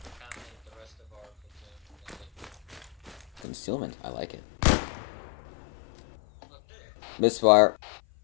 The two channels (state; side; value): drops out; right; at 3.4 s